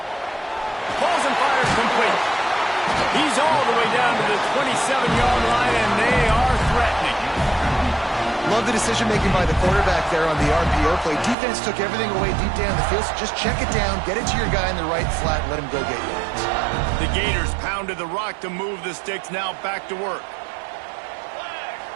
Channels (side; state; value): left; drops out; at 11.4 s